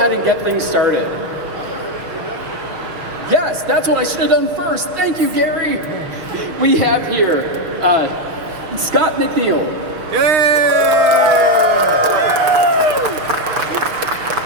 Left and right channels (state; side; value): late; left; 6.1 ms